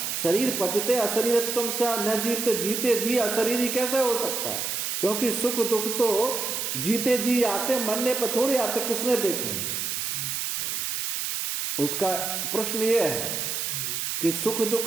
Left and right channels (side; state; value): right; noise; hiss, 2 dB below the sound